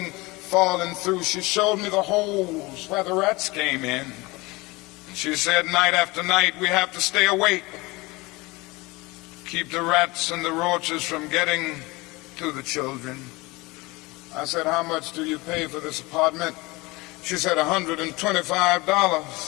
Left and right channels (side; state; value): right; quieter; 23.2 dB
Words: falling through. She showed me the holes where the rats came in. She said, night after night, we have to stay awake, keep the rats and the roaches from getting to the children. I said, how much do you pay for this apartment? She said,